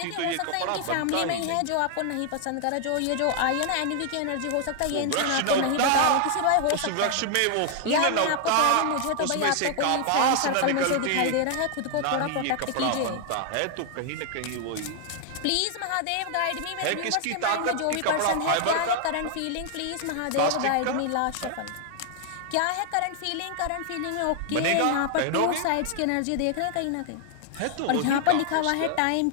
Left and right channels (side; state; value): both; different; correlation 0.00